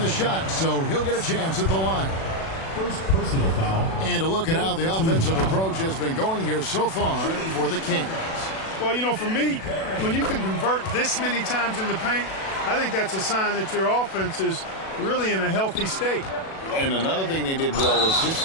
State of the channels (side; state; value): right; late; 37 ms